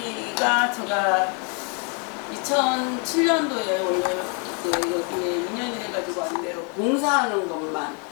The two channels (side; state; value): right; quieter; 37.2 dB